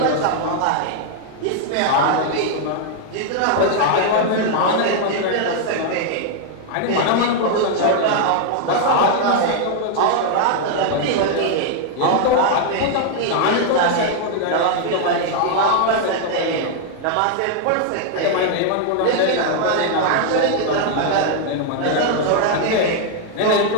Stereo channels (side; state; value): both; different; correlation 0.00